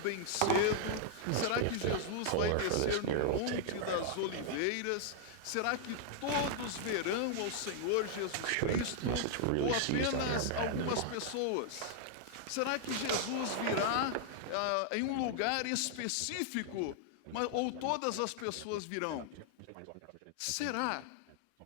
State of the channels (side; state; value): both; different; correlation -0.01